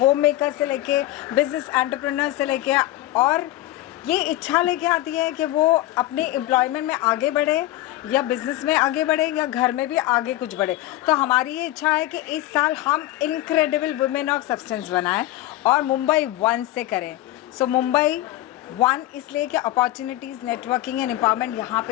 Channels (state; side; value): quieter; right; 15.7 dB